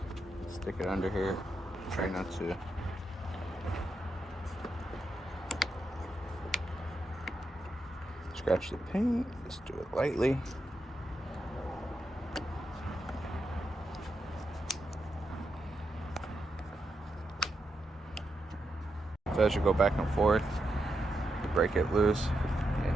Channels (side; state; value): both; normal; correlation 0.85